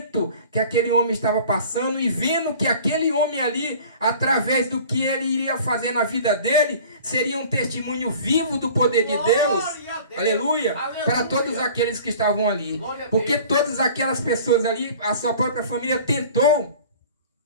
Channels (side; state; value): both; inverted; correlation -0.45